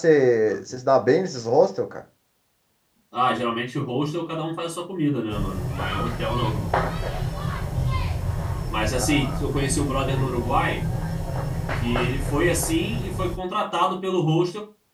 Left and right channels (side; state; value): both; identical; correlation 1.00